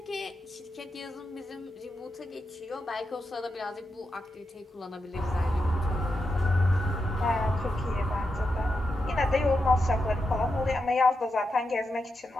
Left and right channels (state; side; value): normal; both; correlation 0.87